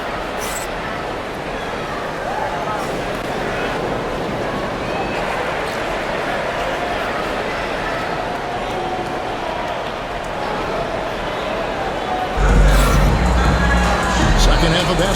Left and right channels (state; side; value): identical; both; correlation 1.00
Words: Second half of